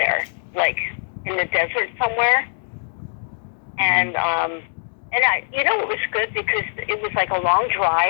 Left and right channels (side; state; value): right; silent; 64 dB below the other